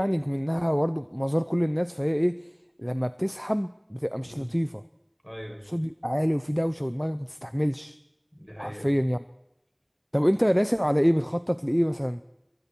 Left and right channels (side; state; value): both; identical; correlation 1.00